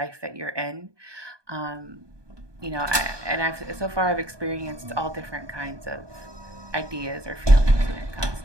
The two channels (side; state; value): left; late; 1.2 ms